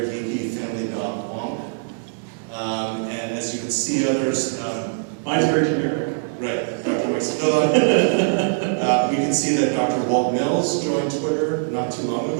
geeky family dog Wonk. And as you can see, others. Mine's very generic. Right, Dr. Maxilla. We can see that Dr. Walt Mills joined Twitter not too long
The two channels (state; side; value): silent; left; digital silence